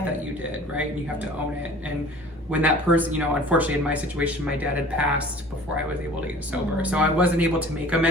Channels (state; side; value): normal; both; correlation 0.46